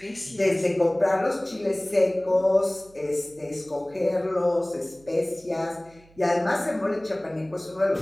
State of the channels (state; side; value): noise; right; hum, 27 dB below the sound